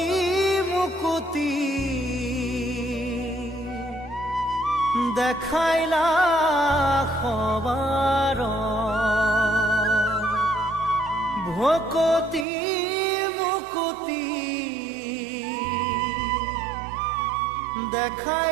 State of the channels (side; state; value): left; drops out; at 12.5 s